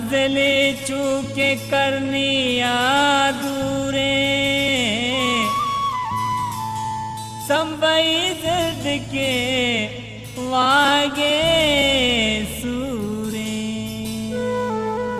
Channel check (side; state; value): both; identical; correlation 1.00